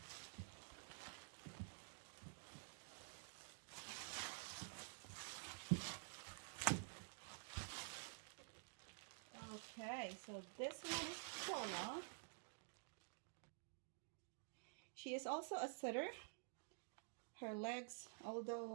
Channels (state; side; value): silent; left; digital silence